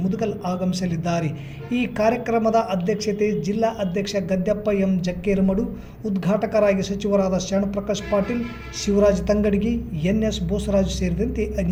ಮುದುಗಲ್ ಆಗಮಿಸಲಿದ್ದಾರೆ. ಈ ಕಾರ್ಯಕ್ರಮದ ಅಧ್ಯಕ್ಷತೆ ಜಿಲ್ಲಾ ಅಧ್ಯಕ್ಷ ಗದ್ದೆಪ್ಪ ಎಂ ಜಕ್ಕೇರಮಡು, ಉದ್ಘಾಟಕರಾಗಿ ಸಚಿವರಾದ ಶರಣಪ್ರಕಾಶ್ ಪಾಟೀಲ್, ಶಿವರಾಜ್ ತಂಗಡಗಿ, ಎನ್.ಎಸ್. ಬೋಸರಾಜು ಸೇರಿದಂತೆ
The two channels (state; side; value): identical; both; correlation 1.00